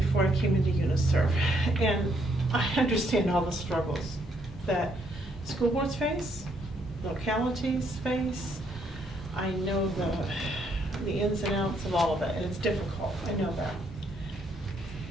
I came into UNICEF, and I understand all the struggles that school boards face, localities face. I know the ins and outs of all of it, and it's difficult. I know that.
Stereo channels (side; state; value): both; normal; correlation 0.71